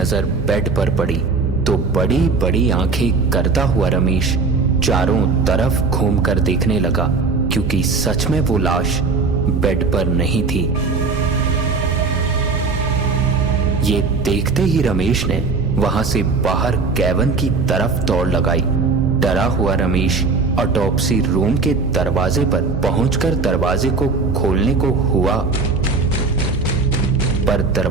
बेड पर पड़ी तो बड़ी बड़ी आंखें करता हुआ रमेश चारों तरफ घूमकर देखने लगा, क्योंकि सच में वो लाश बेड पर नहीं थी। ये देखते ही रमेश ने वहां से बाहर कैबिन की तरफ दौड़ लगाई। डरा हुआ रमेश ऑटोप्सी रूम के दरवाजे पर पहुंचकर दरवाजे को खोलने को हुआ, पर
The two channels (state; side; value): quieter; left; 4.3 dB